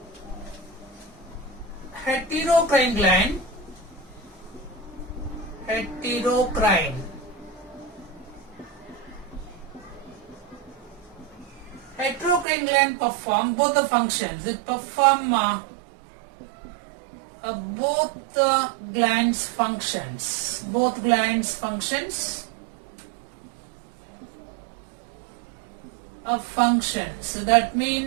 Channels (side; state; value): left; drops out; at 12.5 s